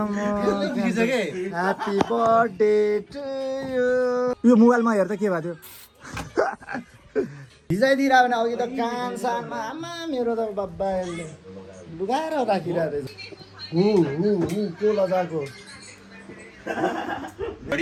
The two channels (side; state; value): both; identical; correlation 1.00